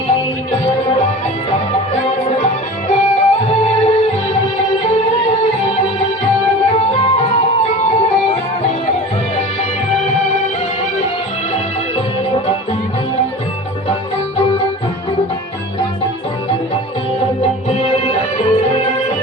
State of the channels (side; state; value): both; normal; correlation 0.36